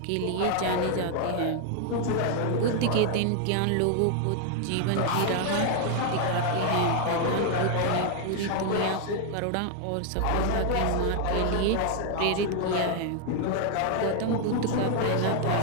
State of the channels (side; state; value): both; different; correlation 0.00